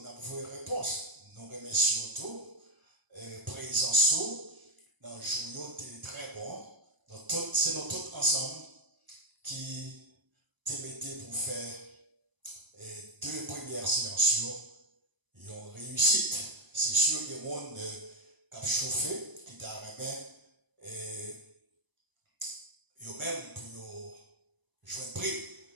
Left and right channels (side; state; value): left; late; 1.0 ms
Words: on a vos réponses nous remercions tout présence dans le jour très bon donc c'est nous tous ensemble qui te mettez pour faire deux premières séances, ils ont réussi. C'est sûr que le monde qui a chauffé, qui t'a remis, ils ont même pour jouer un prix